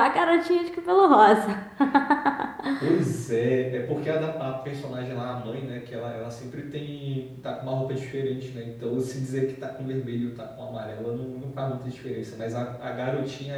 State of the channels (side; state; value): both; identical; correlation 1.00